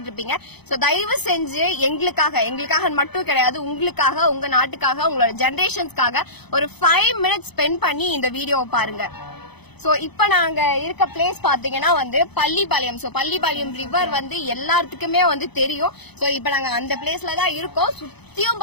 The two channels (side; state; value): right; late; 0.98 ms